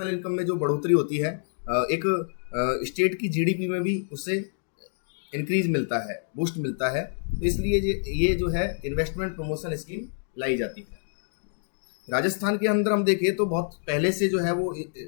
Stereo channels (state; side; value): silent; right; digital silence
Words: इनकम में जो बढ़ोतरी होती है, एक स्टेट की जीडीपी में भी उससे इंक्रीज मिलता है, बूस्ट मिलता है। तो इसलिए ये जो है इन्वेस्टमेंट प्रमोशन स्कीम लाई जाती है। राजस्थान के अंदर हम देखें तो बहुत पहले से जो है वो